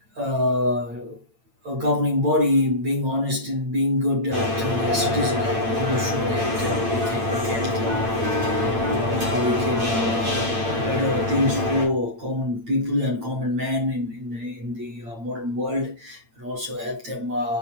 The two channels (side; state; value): left; late; 8.8 ms